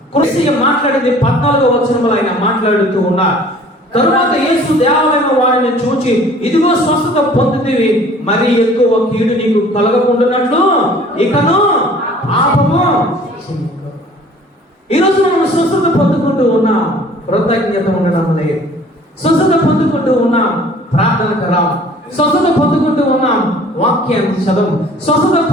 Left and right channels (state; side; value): normal; both; correlation 0.51